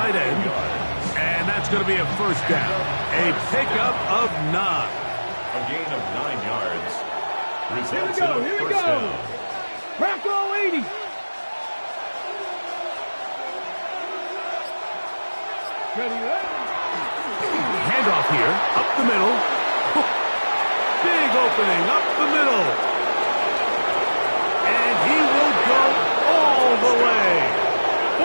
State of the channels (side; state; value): both; inverted; correlation -1.00